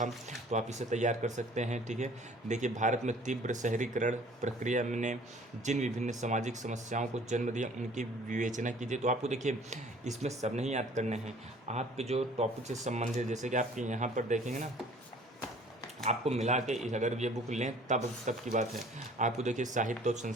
तो आप इसे तैयार कर सकते हैं, ठीक है। देखिए भारत में तीव्र शहरीकरण प्रक्रिया ने जिन विभिन्न सामाजिक समस्याओं को जन्म दिया उनकी विवेचना कीजिए। तो आपको देखिए इसमें सब नहीं याद करने हैं, आपके जो टॉपिक से संबंधित, जैसे कि आपके यहाँ पर देखेंगे ना, आपको मिला के अगर ये बुक लें तब की बात है। आपको देखिए साहित्य और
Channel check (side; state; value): both; normal; correlation 0.52